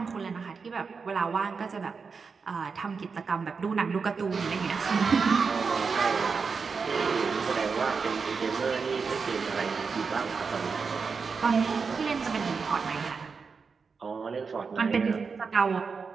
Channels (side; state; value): left; quieter; 5.2 dB